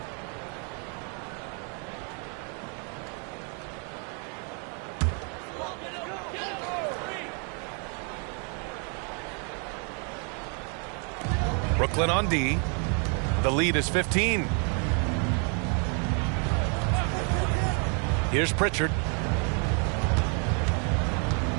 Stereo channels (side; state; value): left; quieter; 38.3 dB